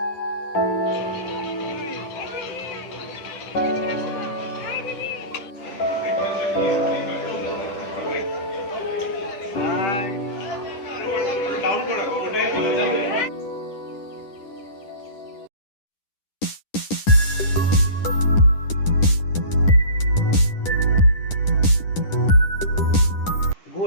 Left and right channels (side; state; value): right; late; 10 ms